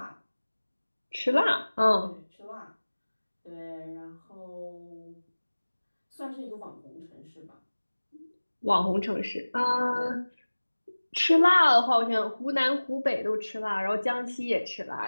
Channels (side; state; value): both; inverted; correlation -1.00